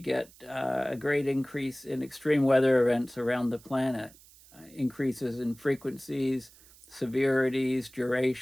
a great increase in extreme weather events around the planet. Increases in frequencies, severities,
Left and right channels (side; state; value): right; noise; hiss, 24 dB below the sound